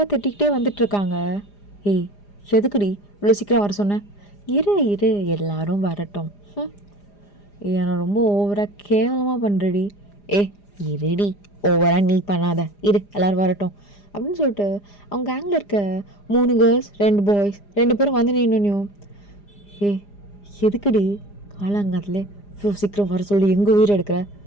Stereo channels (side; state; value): right; late; 4.9 ms